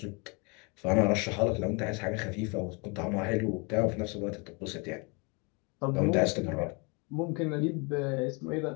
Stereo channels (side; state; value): right; quieter; 31.0 dB